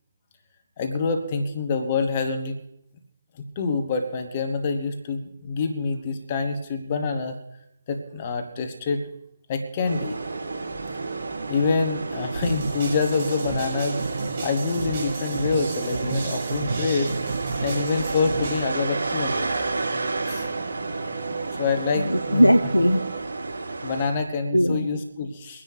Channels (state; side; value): inverted; both; correlation -0.80